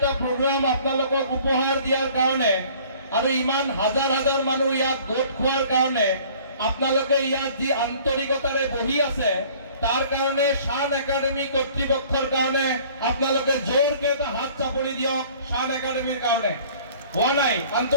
প্ৰগ্ৰাম আপোনালোকক উপহাৰ দিয়াৰ কাৰণে আৰু ইমান হাজাৰ হাজাৰ মানুহ ইয়াত গোট খোৱাৰ কাৰণে আপোনালোকে ইয়াত যি আন্তৰিকতাৰে বহি আছে তাৰ কাৰণে শান একাডেমী কৰ্তৃপক্ষৰ কাৰণে আপোনালোকে জোৰকে এটা হাত চাপৰি দিয়ক। শান একাডেমীৰ কাৰণে হোৱা নাই,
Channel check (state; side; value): inverted; both; correlation -0.52